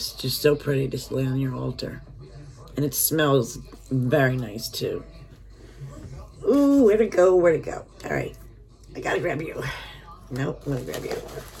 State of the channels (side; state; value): both; identical; correlation 1.00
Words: just so pretty to lay on your altar. And it smells very nice too. Ooh, where to go, where to go. All right, I gotta grab you. Nope, I'm gonna grab you.